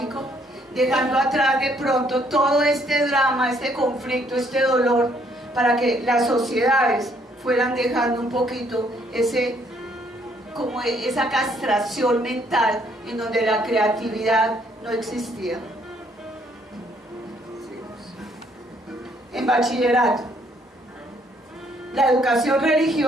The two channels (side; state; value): both; normal; correlation 0.67